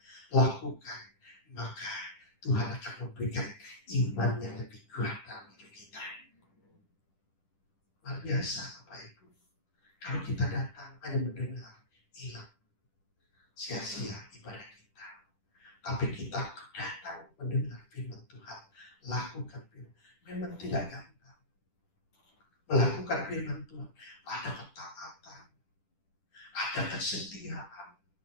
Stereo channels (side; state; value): right; late; 10 ms